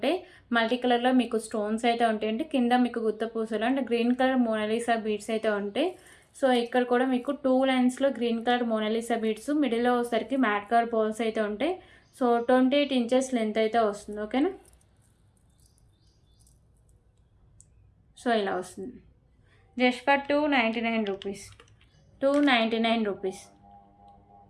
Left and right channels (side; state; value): both; identical; correlation 1.00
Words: మల్టీ కలర్లో మీకు స్టోన్స్ అయితే ఉంటాయండి. కింద మీకు గుత్త పూసలు అంటే గ్రీన్ కలర్ మోనాలిసా బీడ్స్ అయితే ఉంటాయి. సో ఇక్కడ కూడా మీకు 2 లైన్స్లో గ్రీన్ కలర్ మోనాలిసా బీడ్స్, మిడిల్లో వచ్చేసరికి మ్యాట్ కలర్ బాల్స్ అయితే ఉంటాయి. సో 28 ఇంచెస్ లెంత్ అయితే వస్తుంది. ఓకేనా. సో ఇలా వస్తుంది. Just for 299 rupees. 299 rupees.